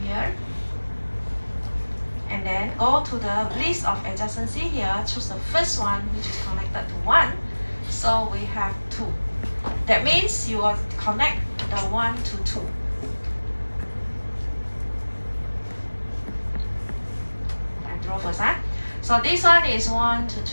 here. And then go to the list of adjacency here, choose the first one which is connected to 1. So we have 2. That means you will connect the 1 to 2. I draw first, huh? So this one is 1 to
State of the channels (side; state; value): both; inverted; correlation -1.00